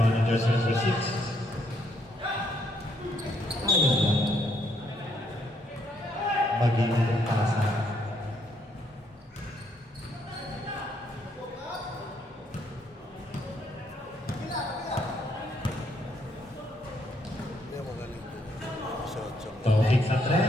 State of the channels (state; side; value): normal; both; correlation 0.72